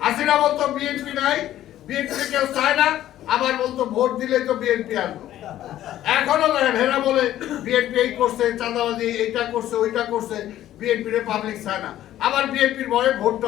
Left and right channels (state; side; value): quieter; right; 12.9 dB